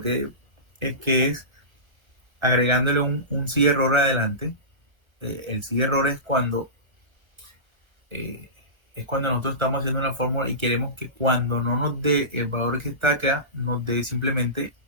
que es agregándole un sí error adelante. El sí error es cuando nosotros estamos haciendo una fórmula y queremos que cuando no nos dé el valor que está acá, nos dé simplemente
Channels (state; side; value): late; left; 1.2 ms